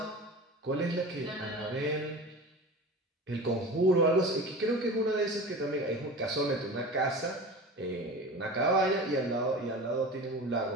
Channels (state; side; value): normal; both; correlation 0.34